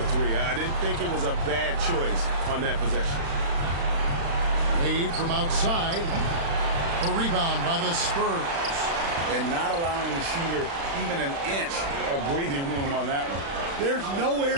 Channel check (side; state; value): left; late; 36 ms